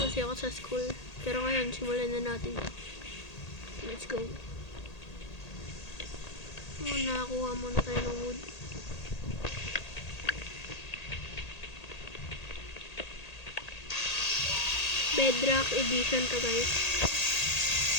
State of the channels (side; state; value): right; late; 1.8 ms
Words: kasi ako sa school. Pero ngayon, simulan na natin. Let's go. Nakakuha muna tayo ng wood. Bedrock edition to guys.